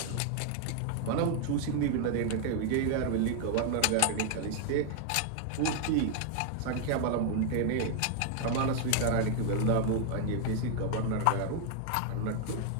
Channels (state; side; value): different; both; correlation 0.00